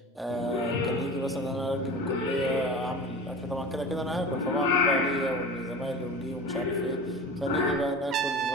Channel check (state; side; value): normal; both; correlation 0.34